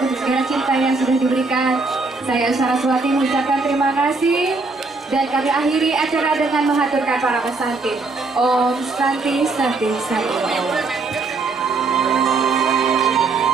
segala cinta yang sudah diberikan. Saya Saraswati mengucapkan terima kasih dan kami akhiri acara dengan menghaturkan para pesantin. Om Santi Santi Santi.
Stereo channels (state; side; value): quieter; left; 3.8 dB